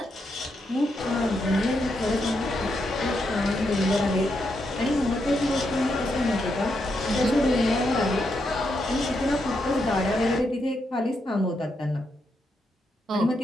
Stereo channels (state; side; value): normal; both; correlation 0.81